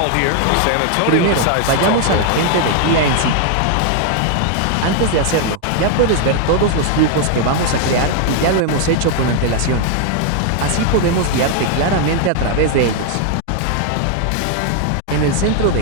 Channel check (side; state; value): both; different; correlation 0.00